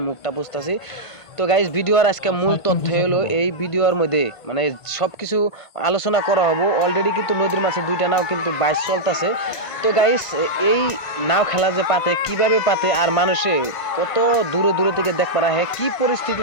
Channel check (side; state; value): right; late; 1.5 ms